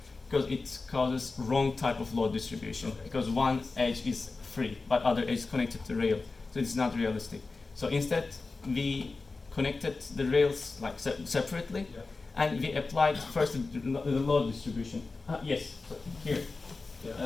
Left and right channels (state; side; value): quieter; right; 3.8 dB